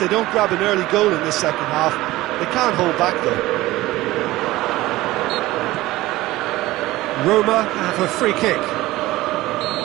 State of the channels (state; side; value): quieter; left; 17.7 dB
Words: don't grab an early goal in this second half, they can't hold back though. Roma have a free kick.